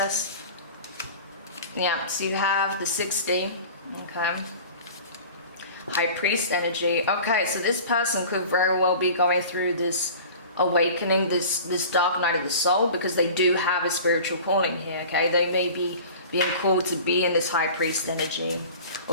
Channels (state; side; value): inverted; both; correlation -0.40